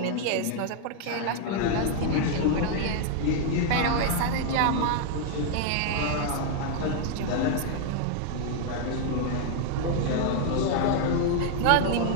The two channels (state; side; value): different; both; correlation 0.00